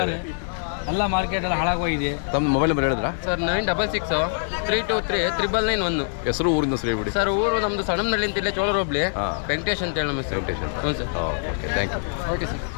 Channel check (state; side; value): silent; right; digital silence